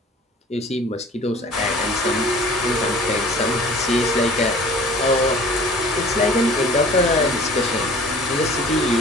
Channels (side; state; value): both; normal; correlation 0.47